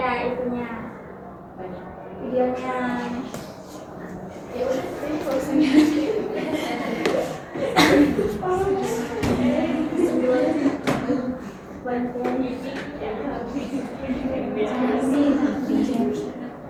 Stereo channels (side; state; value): both; identical; correlation 1.00